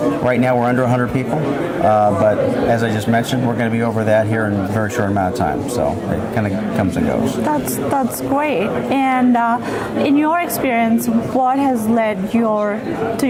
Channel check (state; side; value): identical; both; correlation 1.00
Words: Right now we're under 100 people, but as I just mentioned, we're going to be over that here in a very short amount of time. So it kind of comes and goes. That's great. And in your experience, what has led to